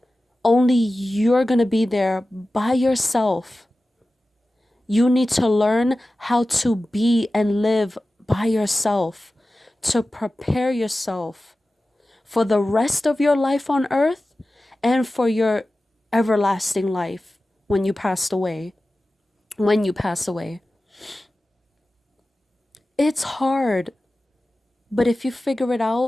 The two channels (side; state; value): both; normal; correlation 0.95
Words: Only you're going to be there by yourself. You need to learn how to be and live by yourself, to prepare yourself for the rest of your life on earth and for your everlasting life when you pass away. When you pass away. It's hard, but if you figure it